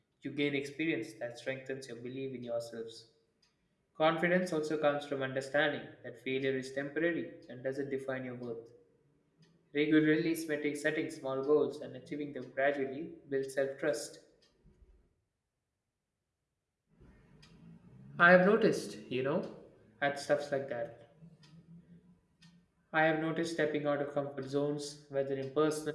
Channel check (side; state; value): both; identical; correlation 1.00